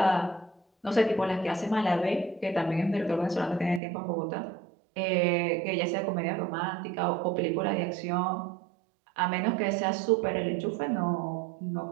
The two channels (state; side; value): drops out; left; at 3.8 s